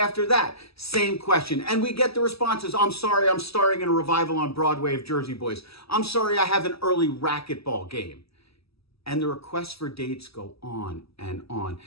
that, same question. And we get the responses. I'm sorry, I'm starring in a revival on Broadway of Jersey Boys. I'm sorry, I have an early racquetball game. And the requests for dates go on and on.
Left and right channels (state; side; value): late; right; 0.77 ms